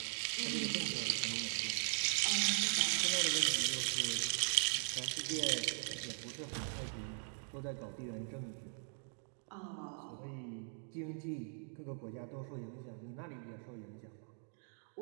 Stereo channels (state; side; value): silent; left; 51 dB below the other